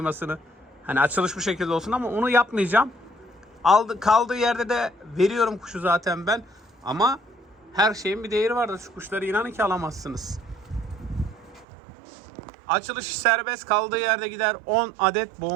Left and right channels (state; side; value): drops out; left; at 11.7 s